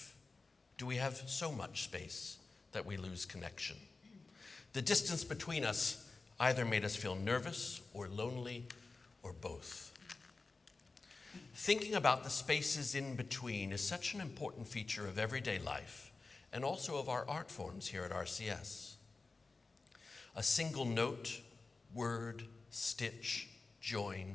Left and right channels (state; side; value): quieter; right; 3.8 dB